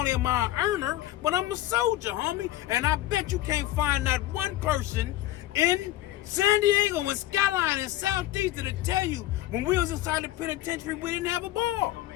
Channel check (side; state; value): right; quieter; 14.8 dB